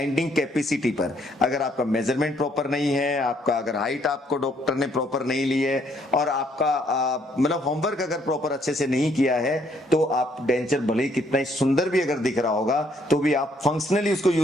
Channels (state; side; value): normal; both; correlation 0.68